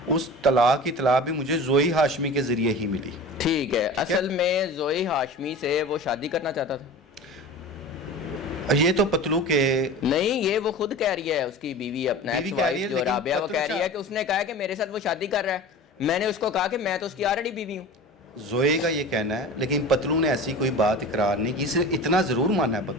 اس طلاق کی اطلاع بھی مجھے زوئی ہاشمی کے ذریعے ہی ملی. ٹھیک ہے، اصل میں زوئی ہاشمی سے وہ شادی کرنا چاہتا تھا؟ یہ تو پتلو کے نہیں، یہ وہ خود کہہ رہی ہے، اس کی بیوی اپنا ایکس وائف جو رابعہ، وہ کہہ رہی ہے کہ اس نے کہا کہ میرے ساتھ وہ شادی کر رہا ہے، میں نے اس کو کہا کہ میں تو اس کی آلریڈی بیوی ہوں. زوئے کا یہ کہنا ہے، لیکن پتلو نے ایسی کوئی بات اقرار نہیں کی، صرف اتنا ضرور مانا ہے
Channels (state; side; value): normal; both; correlation 0.35